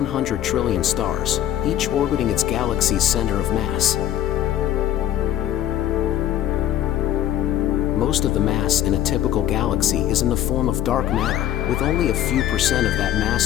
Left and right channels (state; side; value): quieter; right; 11.9 dB